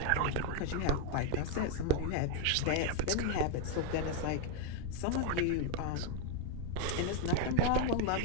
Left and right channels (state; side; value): different; both; correlation 0.01